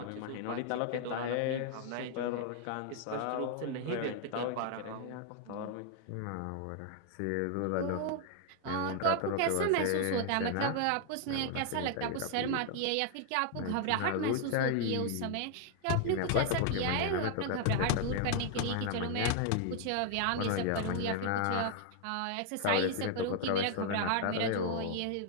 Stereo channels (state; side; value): different; both; correlation 0.00